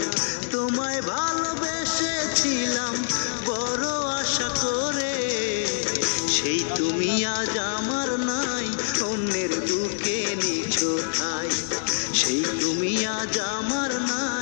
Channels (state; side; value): silent; right; 62 dB below the other